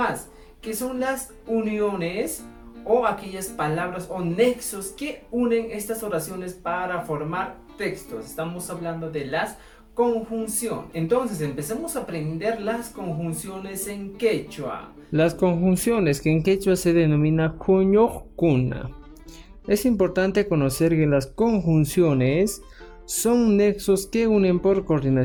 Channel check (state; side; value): identical; both; correlation 1.00